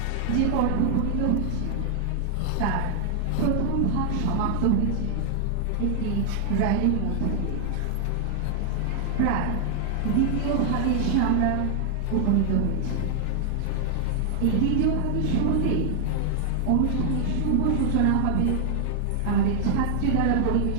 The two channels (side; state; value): both; different; correlation 0.00